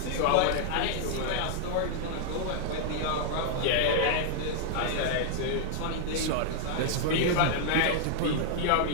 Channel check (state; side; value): different; both; correlation -0.01